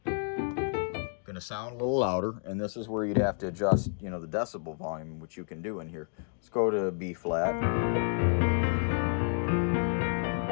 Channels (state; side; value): silent; right; 58 dB below the other